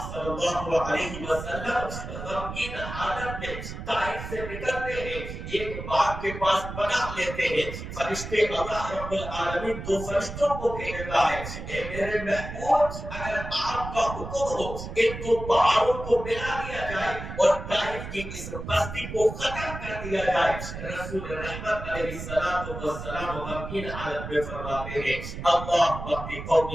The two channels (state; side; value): noise; right; rumble, 9 dB below the sound